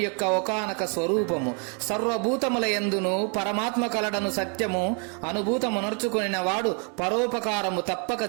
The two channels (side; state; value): left; quieter; 37.8 dB